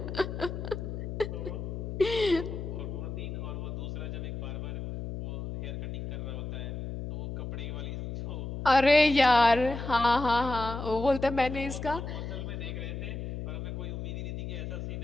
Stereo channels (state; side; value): noise; left; hum, 6 dB below the sound